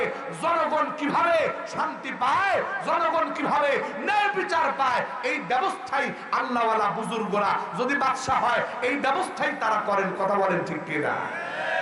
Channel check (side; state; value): both; identical; correlation 1.00